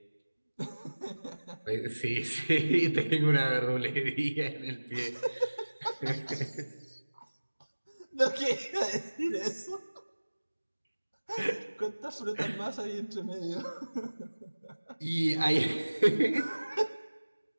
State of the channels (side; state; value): both; inverted; correlation -1.00